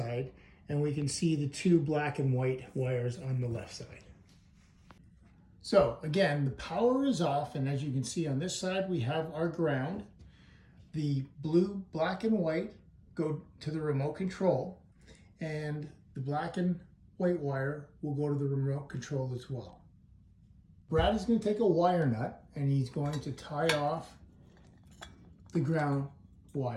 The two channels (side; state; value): both; identical; correlation 1.00